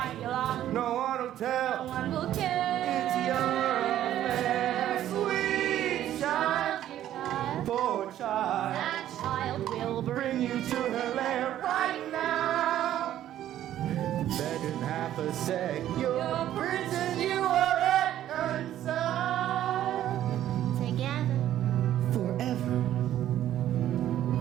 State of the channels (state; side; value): quieter; left; 12.1 dB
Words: Yolanda? No one will tell. No one will care. It's your affair, sweet child. Dear child, Poor child. that child will Bring you to her lair right now. Better than half a sec. Your prince and you are reconciled. together. Forever.